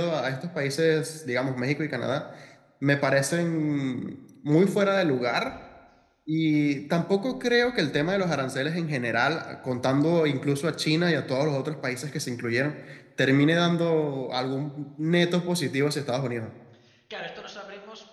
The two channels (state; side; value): identical; both; correlation 1.00